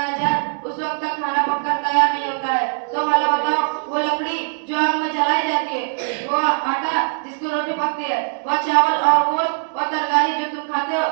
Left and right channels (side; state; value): left; silent; 65 dB below the other